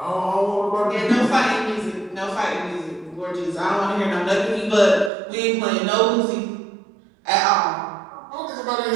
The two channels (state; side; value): drops out; left; at 5.1 s